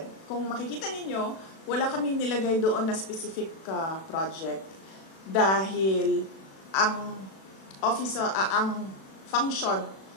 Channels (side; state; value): right; late; 36 ms